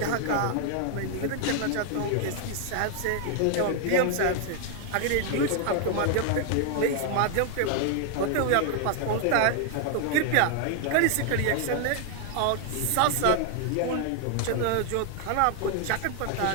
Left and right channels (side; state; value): both; different; correlation 0.00